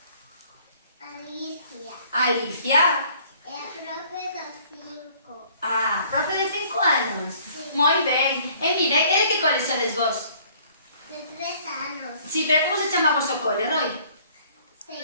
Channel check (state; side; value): inverted; both; correlation -0.57